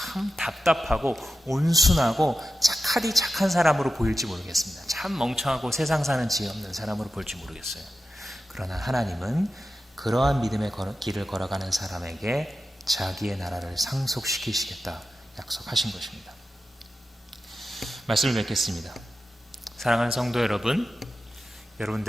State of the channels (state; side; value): normal; both; correlation 0.91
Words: 답답하고 온순하고 착한 사람으로 보일지 모르겠습니다. 참 멍청하고 세상 사는 지혜 없는 사람으로 볼지 모르겠어요. 그러나 하나님은 그러한 믿음의 길을 걸어가는 사람에게 자기의 나라를 상속시키시겠다 약속하신 것입니다. 말씀을 맺겠습니다. 사랑하는 성도 여러분,